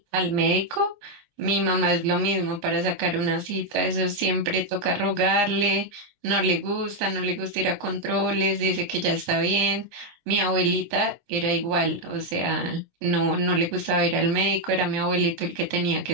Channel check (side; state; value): left; late; 14 ms